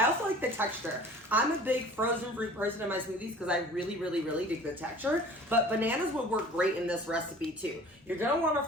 also like the texture. I'm a big frozen fruit person in my smoothies because I really, really, really dig the texture. But bananas would work great in this recipe too. You're gonna want a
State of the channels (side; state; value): both; normal; correlation 0.46